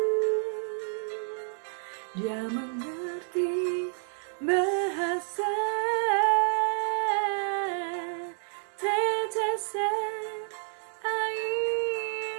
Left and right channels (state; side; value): silent; left; 58 dB below the other